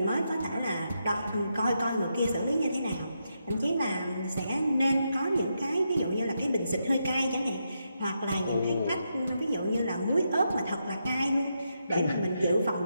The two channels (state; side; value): inverted; both; correlation -0.83